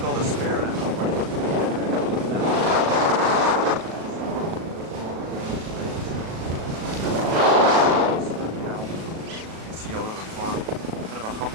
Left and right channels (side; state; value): left; late; 37 ms